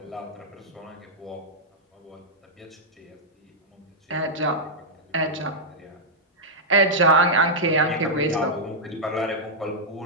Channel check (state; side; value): normal; both; correlation -0.07